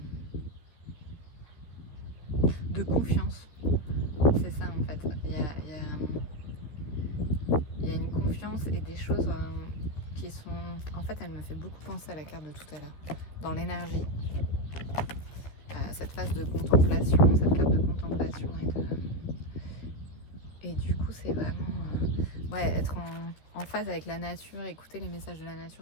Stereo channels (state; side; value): late; right; 13 ms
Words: de confiance. C'est ça en fait. Il y a une confiance et des choses qui sont... En fait, elle me fait beaucoup penser à la carte de tout à l'heure, dans l'énergie. Cette phase de contemplation, cette carte de contemplation et du coup c'est vraiment être en phase avec la nature, écouter les messages de la